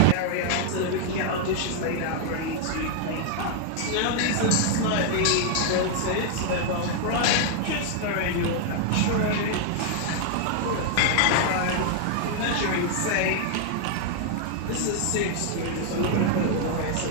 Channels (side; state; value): both; different; correlation 0.00